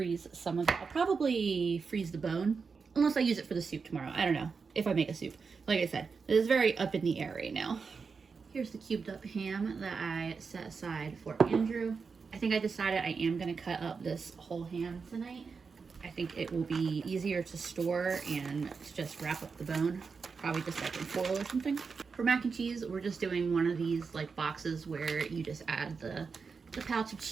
some of it. I'll probably freeze the bone, unless I use it for the soup tomorrow. I don't know if I make a soup. Like I said, it is very up in the air right now. Here's the cubed up ham that I set aside for Andrew. I think I decided I am going to cut up this whole ham tonight. I think it will be easier to store and to just wrap up the bone. Probably just like in foil or something. For mac and cheese, we're just doing one of these like boxes where you just add the pouch of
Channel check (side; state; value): left; quieter; 5.2 dB